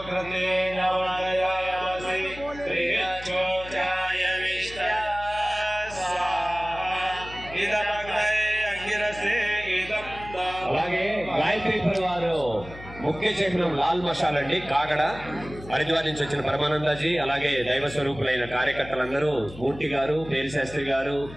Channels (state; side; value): noise; left; hum, 16 dB below the sound